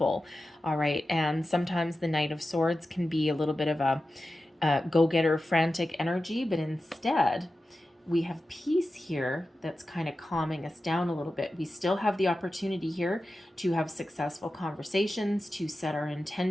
all right? And sometimes the Knight of Swords can be a little bit of a go-getter, frantic energy, but instead, we have peace here that's kind of calming us down a little bit. We still have the opportunity here to have successful conversations, to set our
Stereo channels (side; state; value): both; normal; correlation 0.93